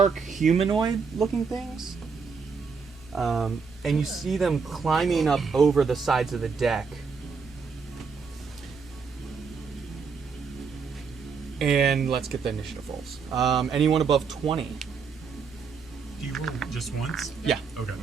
humanoid looking things. And you see them climbing up over the sides of the deck. And let's get the initiative rolls. Anyone above 20? Do you roll just once? Yeah. Okay.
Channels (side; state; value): left; quieter; 5.5 dB